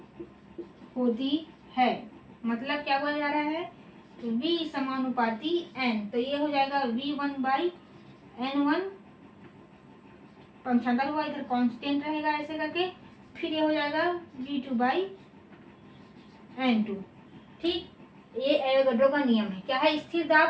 होती है। मतलब क्या बोला जा रहा है, V समानुपाती N, तो ये हो जाएगा V1/N1, पंचांतर हुआ, इधर कांस्टेंट रहेगा ऐसे करके, फिर ये हो जाएगा V2/N2। ठीक, ये एवोगैड्रो का नियम है। क्या है, स्थिर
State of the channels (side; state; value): both; identical; correlation 1.00